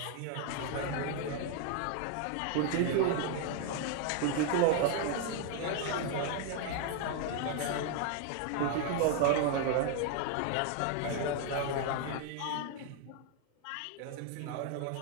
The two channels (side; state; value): both; different; correlation 0.00